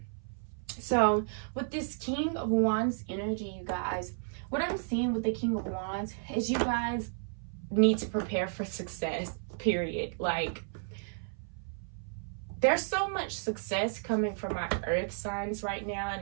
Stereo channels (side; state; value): left; silent; 56 dB below the other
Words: So with this King of Wands energy, you guys, what I'm seeing with the King of Wands is you guys need to prepare for success, period. Like, there's so much success coming from our earth signs right now,